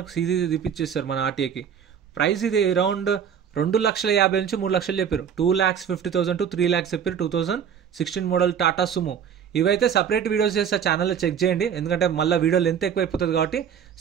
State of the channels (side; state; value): left; quieter; 8.0 dB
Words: సీసీ తీపిచ్చేస్తారు మన ఆర్టీఐకి. ప్రైస్ ఇది అరౌండ్ 2,50,000 నుంచి 3 లక్షలు చెప్పారు. 2,50,000 to 3 lakhs చెప్పారు. 2016 మోడల్ టాటా సుమో. ఇవైతే సపరేట్ వీడియోస్ చేస్తే ఛానల్లో చెక్ చేయండి, ఎందుకంటే మళ్ళీ వీడియో లెంత్ ఎక్కువ అయిపోతుంది కాబట్టి